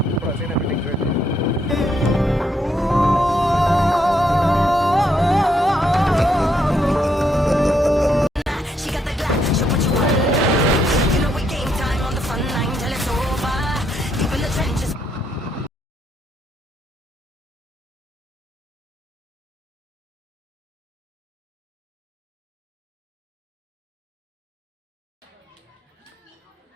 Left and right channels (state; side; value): normal; both; correlation 0.75